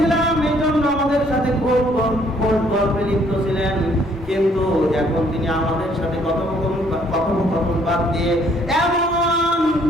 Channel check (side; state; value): both; normal; correlation 0.64